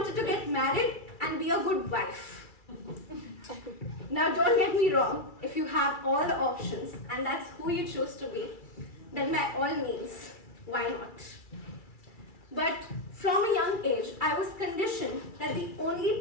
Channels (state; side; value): late; right; 2.3 ms